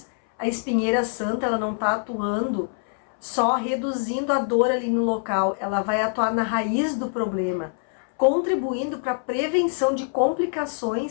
a espinheira santa ela não está atuando só reduzindo a dor ali no local, ela vai atuar na raiz do problema, contribuindo para a prevenção de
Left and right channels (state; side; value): silent; right; 62 dB below the other